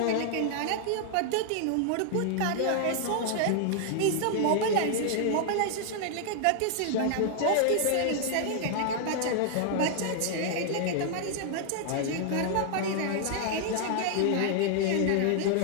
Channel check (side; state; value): both; different; correlation 0.00